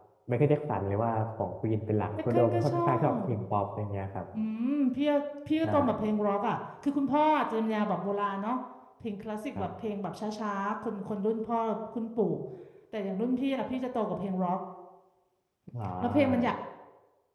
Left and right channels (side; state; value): both; identical; correlation 1.00